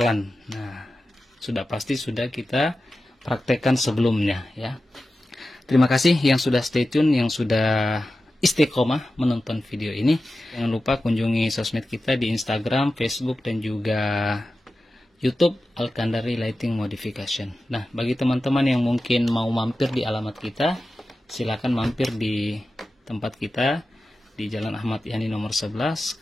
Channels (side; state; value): both; normal; correlation 0.93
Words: Nah, sudah pasti sudah kita praktekkan sebelumnya ya. Terima kasih yang sudah stay tune, yang sudah istiqomah menonton video ini. Jangan lupa kunjungi sosmed kita di Instagram, Facebook, dan juga YouTube Alkandari Lighting Modification. Nah, bagi teman-teman yang mungkin mau mampir di alamat kita, silakan mampir di tempat kita di Jalan Ahmad Yani nomor 11,